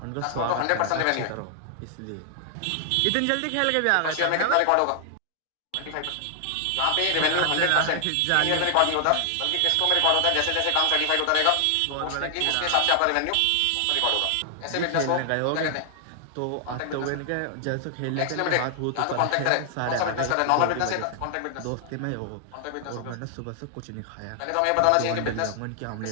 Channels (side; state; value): both; different; correlation 0.00